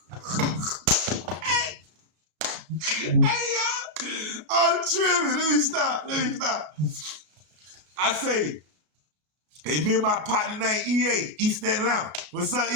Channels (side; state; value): left; late; 32 ms